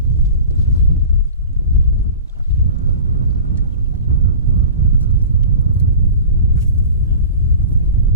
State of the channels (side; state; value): both; inverted; correlation -0.37